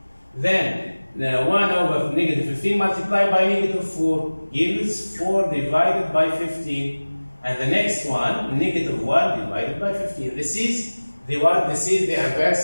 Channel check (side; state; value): both; inverted; correlation -1.00